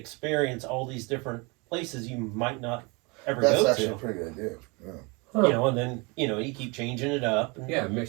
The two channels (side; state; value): left; quieter; 28.7 dB